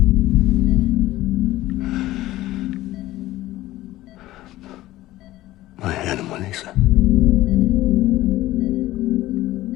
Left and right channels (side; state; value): right; quieter; 16.2 dB